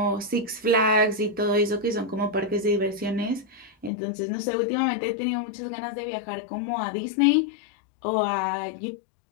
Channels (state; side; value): drops out; right; at 3.9 s